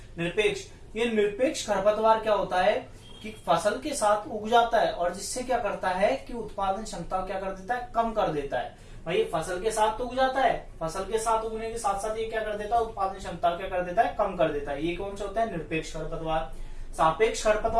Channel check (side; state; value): both; identical; correlation 1.00